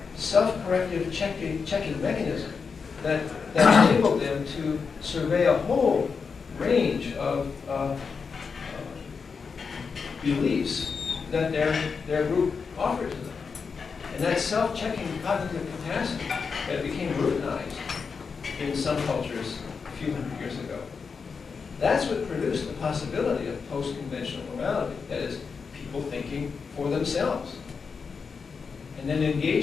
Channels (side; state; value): right; quieter; 5.4 dB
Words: self-corrective checking mechanism that enabled them to survey a whole range of beliefs that their group offered to them. And that self-checking cognitive capacity that became routinized in some cultures a few hundred years ago. That's what produced the possibility of post-conventional morality. That is, people thinking for themselves. And then